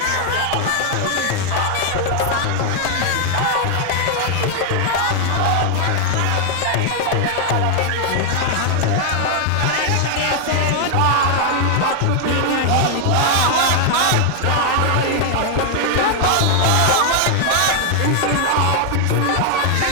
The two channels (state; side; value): different; both; correlation 0.00